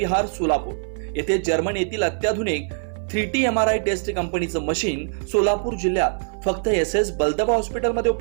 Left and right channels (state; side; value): silent; left; 56 dB below the other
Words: सोलापूर येथे जर्मन येथील अत्याधुनिक 3T MRI टेस्ट कंपनीचं मशीन सोलापूर जिल्ह्यात फक्त SS बलदबा हॉस्पिटलमध्ये